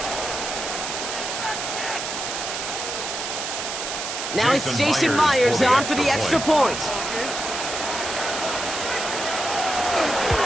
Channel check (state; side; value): noise; right; hiss, 4 dB below the sound